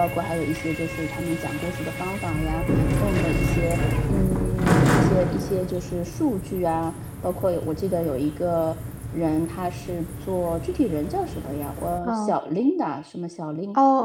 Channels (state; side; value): identical; both; correlation 1.00